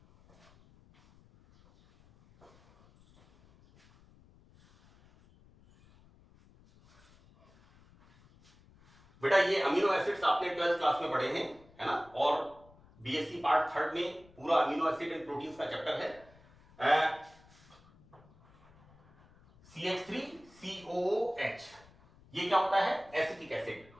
बेटा ये अमीनो एसिड्स आपने 12th क्लास में पढ़े हैं, है ना, और बीएससी पार्ट 3 में पूरा अमीनो एसिड एंड प्रोटीन्स का चैप्टर है। CH3COOH, ये क्या होता है, एसिटिक एसिड,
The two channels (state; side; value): noise; left; rumble, 27 dB below the sound